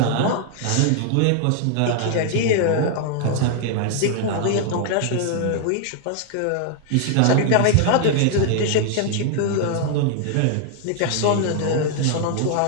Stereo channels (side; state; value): both; different; correlation 0.00